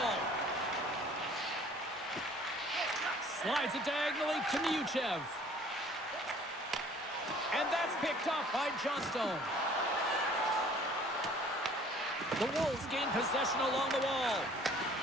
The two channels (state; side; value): normal; both; correlation 0.53